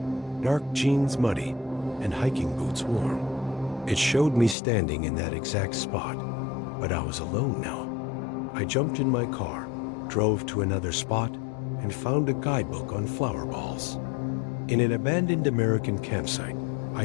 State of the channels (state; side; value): drops out; right; at 4.5 s